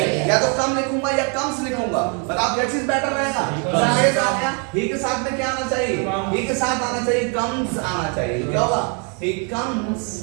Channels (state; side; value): quieter; left; 37.6 dB